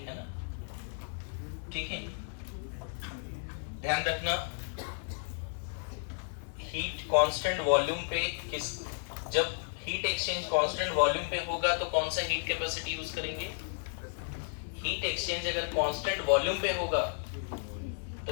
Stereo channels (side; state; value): right; silent; digital silence